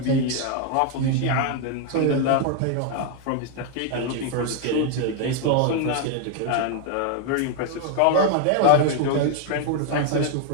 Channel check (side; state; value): both; different; correlation 0.00